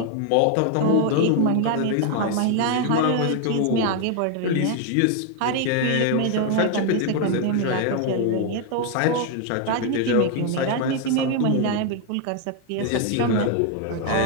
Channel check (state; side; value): different; both; correlation 0.01